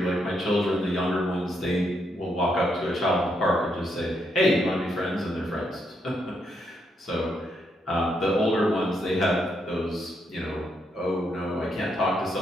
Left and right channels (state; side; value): normal; both; correlation 0.78